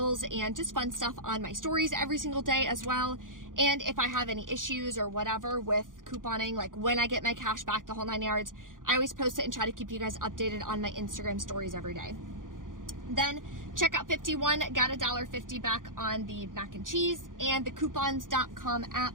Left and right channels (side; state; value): left; late; 0.89 ms